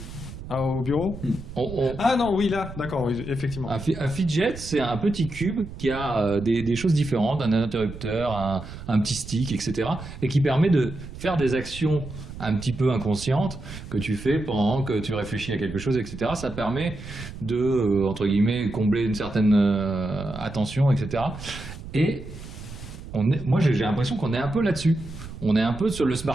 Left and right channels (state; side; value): noise; right; rumble, 12 dB below the sound